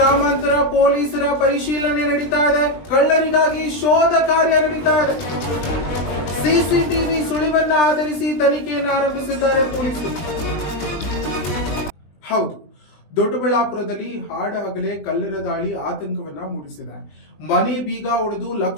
ಪೊಲೀಸರ ಪರಿಶೀಲನೆ ನಡೀತಾ ಇದೆ. ಕಳ್ಳರಿಗಾಗಿ ಶೋಧ ಕಾರ್ಯ ನಡೀತಾ ಇದೆ. ಸಿಸಿಟಿವಿ ಸುಳಿವನ್ನ ಆಧರಿಸಿ ತನಿಖೆಯನ್ನು ಆರಂಭಿಸಿದ್ದಾರೆ ಪೊಲೀಸರು. ಹೌದು, ದೊಡ್ಡಬಳ್ಳಾಪುರದಲ್ಲಿ ಹಾಡ ಹಗಲೇ ಕಳ್ಳರ ದಾಳಿ ಆತಂಕವನ್ನ ಮೂಡಿಸಿದೆ. ಮನೆ ಬೀಗ ಒಡೆದು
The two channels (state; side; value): late; right; 20 ms